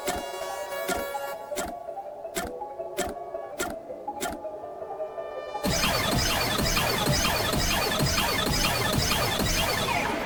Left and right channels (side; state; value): both; identical; correlation 1.00